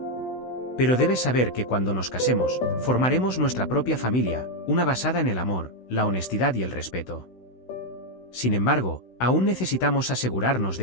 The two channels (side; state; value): right; late; 16 ms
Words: Pero debes saber que cuando nos casemos, formaremos nuestra propia familia, una basada en el amor, la honestidad y el respeto. sin embargo, aún necesitamos asegurarnos